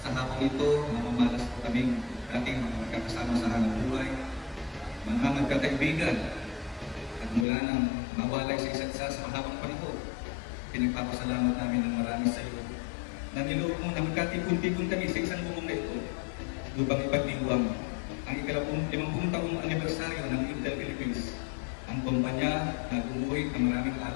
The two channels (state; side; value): drops out; right; at 7.5 s